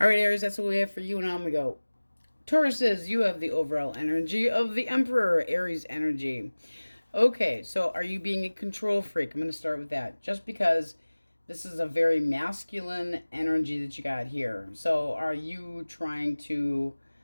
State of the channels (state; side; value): inverted; both; correlation -1.00